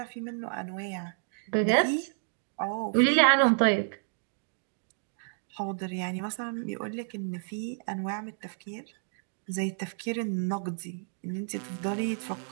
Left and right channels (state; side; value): silent; left; digital silence